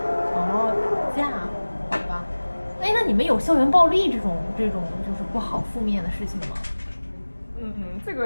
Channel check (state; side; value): inverted; both; correlation -1.00